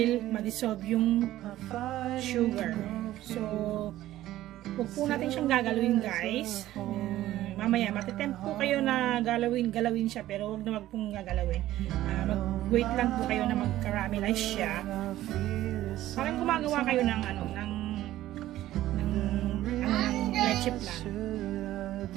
ma-dissolve yung sugar. So, huwag po natin siyang gagalawin guys. Mamaya, matitempt po kayo na galawin siya, pero huwag na wag pong gagalawin. Mag-wait lang po kayo na mag-caramelize siya. Parang gumagawa kayo ng leche plan.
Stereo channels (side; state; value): left; quieter; 14.5 dB